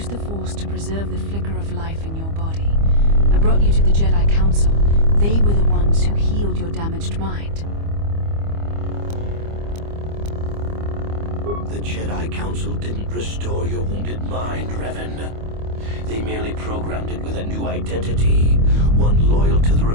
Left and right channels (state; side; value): late; left; 25 ms